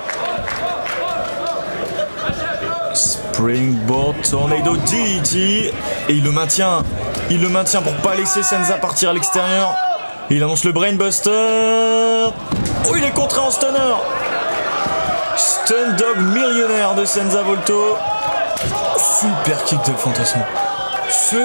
Springboard Tornado DDT. Et il le maintient. Il le maintient pour pas laisser Senza partir à l'extérieur. Et il annonce le Brainbuster. Oh, il est contré en stunner. Stun Dog millionnaire de Senza Volto. Super kick d'El Fantasmo.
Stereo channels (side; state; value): both; inverted; correlation -1.00